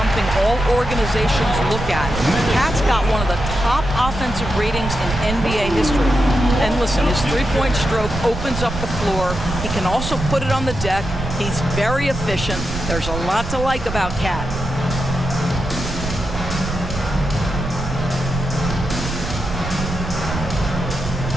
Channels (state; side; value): noise; right; rumble, 6 dB below the sound